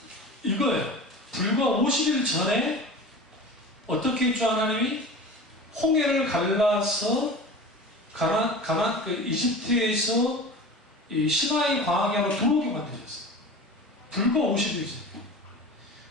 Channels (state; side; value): normal; both; correlation 0.35